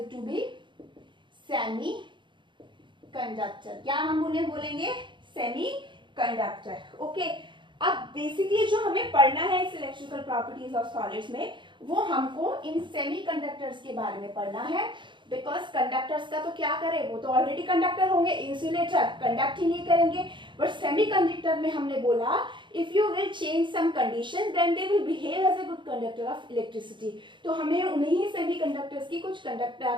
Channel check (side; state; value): left; late; 0.23 ms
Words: to be semi conductor। क्या हम उन्हें बोलेंगे? Semi conductor. ओके, अब बेसिकली जो हमें पढ़ना है इस इलेक्ट्रिकल प्रॉपर्टीज ऑफ सॉलिड्स में, वो हमको इन सेमीकंडक्टर्स के बारे में पढ़ना है। बिकॉज कंडक्टर्स का तो क्या करें, वो तो ऑलरेडी कंडक्टर होंगे, इंसुलेटर कंडक्ट ही नहीं करेंगे, बट सेमीकंडक्टर में हमने बोला if you will change some condition then they will behave as a good conductor of electricity. तो हमें उन्हीं सेमीकंडक्टर्स की कुछ